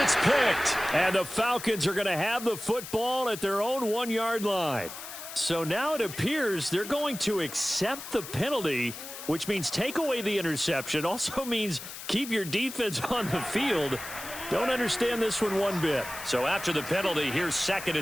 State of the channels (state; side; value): noise; left; hiss, 11 dB below the sound